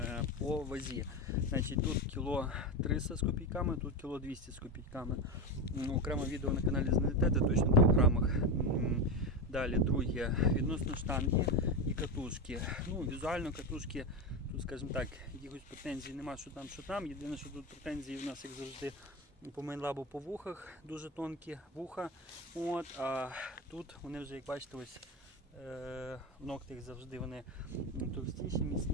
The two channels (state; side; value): normal; both; correlation 0.17